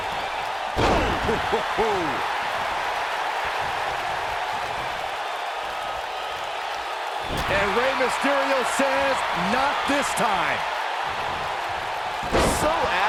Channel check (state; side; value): identical; both; correlation 1.00